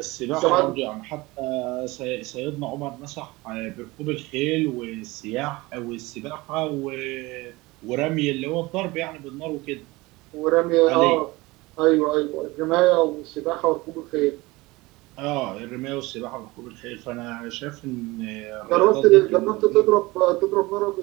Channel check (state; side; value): quieter; left; 21.7 dB